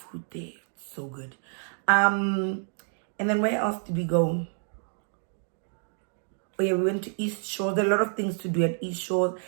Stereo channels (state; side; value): silent; left; digital silence